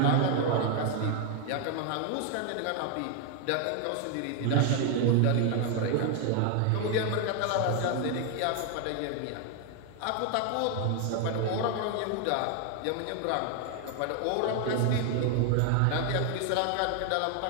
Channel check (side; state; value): both; different; correlation 0.01